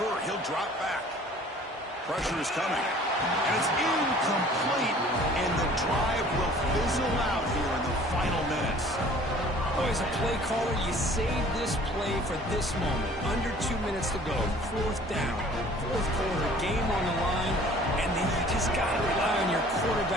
He'll drop back. Pressure is coming. And it's incomplete. And the drive will fizzle out here in the final minutes. Oh, as a play caller, you save this play for this moment. Under 2 minutes to go. Fourth down. Fourth quarter. Game on the line. And then you just got to rely on your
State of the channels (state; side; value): normal; both; correlation 0.51